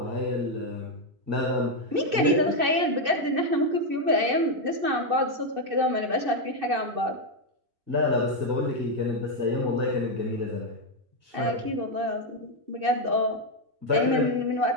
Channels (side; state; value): left; late; 2.6 ms